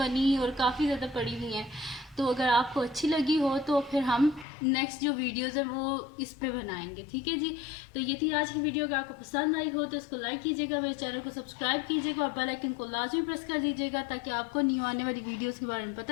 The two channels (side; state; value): right; drops out; at 4.5 s